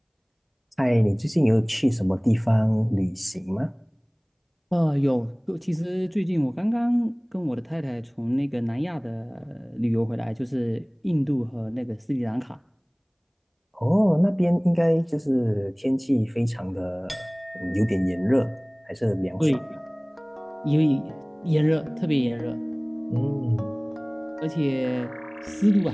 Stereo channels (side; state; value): both; identical; correlation 1.00